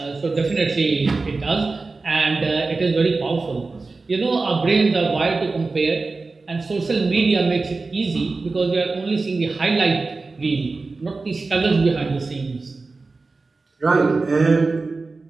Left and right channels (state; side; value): quieter; left; 3.8 dB